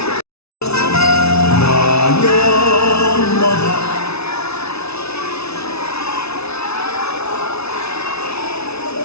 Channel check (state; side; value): late; right; 0.80 ms